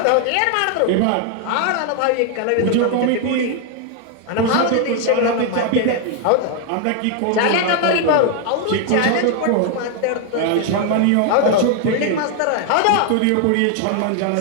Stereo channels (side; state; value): both; different; correlation 0.00